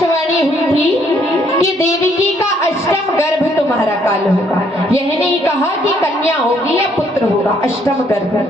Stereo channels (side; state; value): both; normal; correlation 0.67